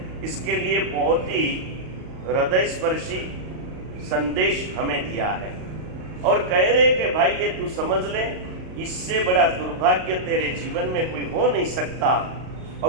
इसके लिए बहुत ही हृदय स्पर्शी संदेश हमें दिया है। और कह रहे कि भाई ये तू समझ ले, इससे बड़ा दुर्भाग्य तेरे जीवन में कोई हो नहीं सकता।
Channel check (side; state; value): left; late; 38 ms